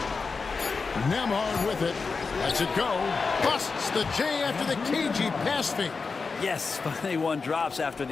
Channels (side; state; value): right; quieter; 4.6 dB